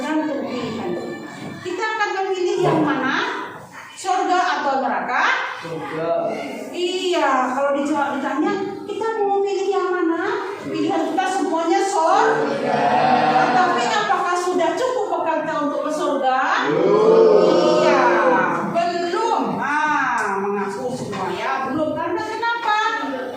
pilihan kita. Kita akan memilih yang mana, surga atau neraka? Surga. Iya, kalau dijawab ditanya, kita mau pilih yang mana? Pilihan kita semuanya surga. Tapi apakah sudah cukup bekal kita untuk ke surga? Iya, belum. Mengaku semua ya, belum. Karena kenapa?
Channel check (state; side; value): identical; both; correlation 1.00